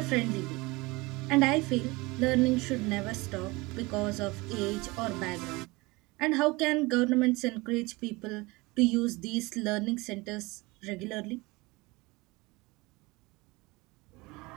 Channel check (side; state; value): left; quieter; 23.5 dB